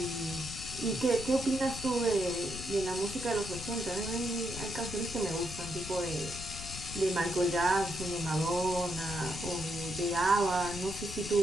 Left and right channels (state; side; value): noise; left; rumble, 10 dB below the sound